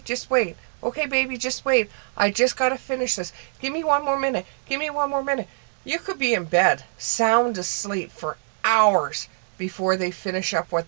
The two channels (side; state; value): left; silent; digital silence